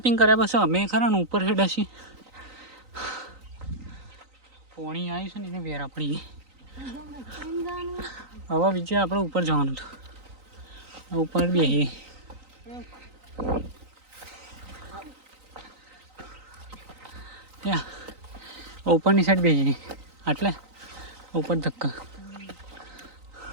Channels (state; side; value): late; left; 3.9 ms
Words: કર્યા પછી અમે ખરા ને ઉપર હેડ્યા છીએ. પાણી આવ્યું છે ને એને વેરા પડી ગઈ. હવે બીજે આપણે ઉપર જવાનું હતું, ઉપર બેસીએ. ત્યાં ઉપરની સાઈડ બેસીએ, એટલે ઉપર ધક્કા